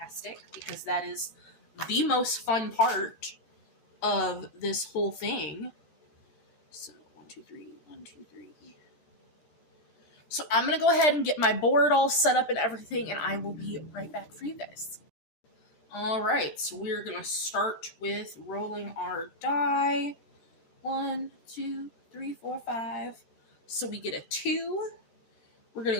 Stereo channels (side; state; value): right; late; 13 ms